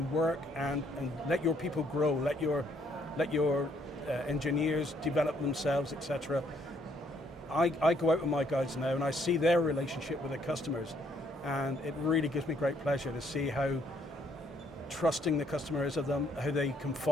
work and let your people grow, let your engineers develop themselves, etc. I go out with my guys now and I see their relationship with the customers, and it really gives me great pleasure to see how trusting the customer is of them, how they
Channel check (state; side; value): normal; both; correlation 0.68